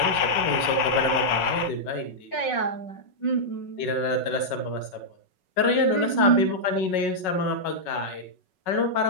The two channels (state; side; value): late; right; 5.4 ms